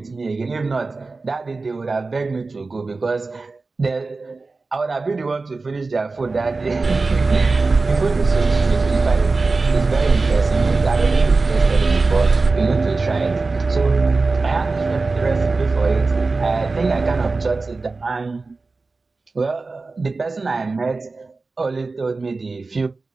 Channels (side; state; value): left; quieter; 3.8 dB